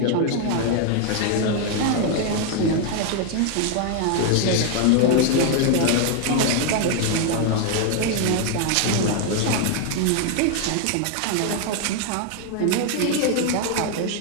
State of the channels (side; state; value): both; different; correlation 0.01